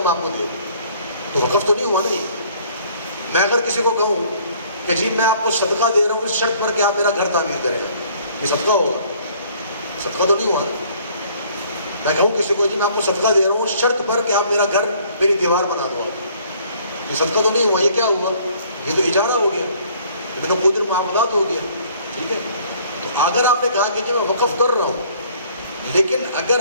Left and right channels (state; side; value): inverted; both; correlation -0.58